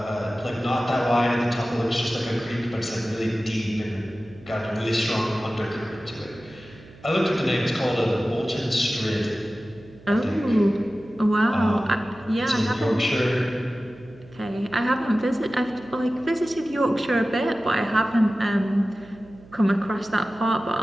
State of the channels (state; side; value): noise; right; hum, 22 dB below the sound